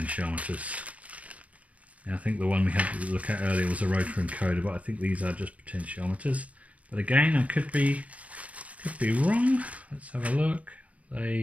Yeah, I think the one we had to look at earlier was a Rotary encoder, but I think these are just potentiometers. But again, I could be wrong. Let's have a look.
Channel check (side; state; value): left; late; 0.067 ms